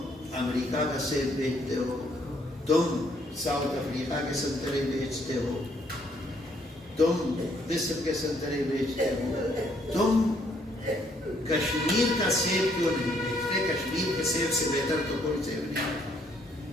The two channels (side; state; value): both; normal; correlation 0.68